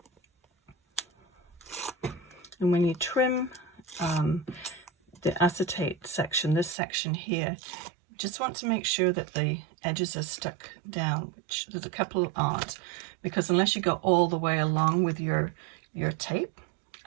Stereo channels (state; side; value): drops out; left; at 6.8 s